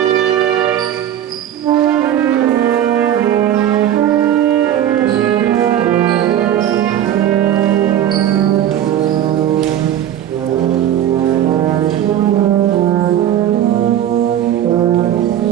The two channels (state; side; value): quieter; left; 10.9 dB